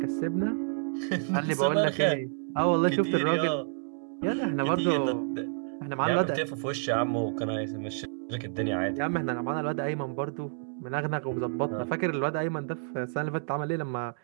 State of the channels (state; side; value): silent; left; digital silence